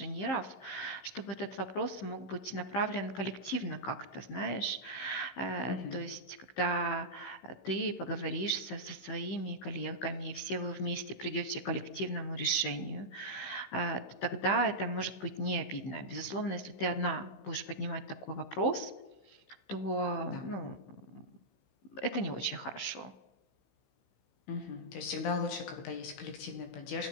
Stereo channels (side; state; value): right; late; 16 ms